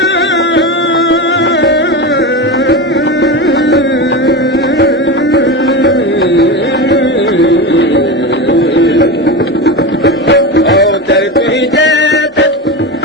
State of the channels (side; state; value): both; normal; correlation 0.21